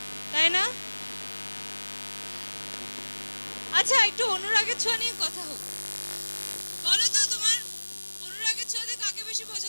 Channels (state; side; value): inverted; both; correlation -1.00